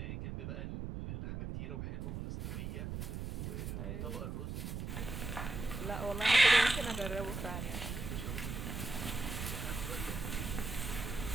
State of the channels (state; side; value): noise; right; rumble, 5 dB below the sound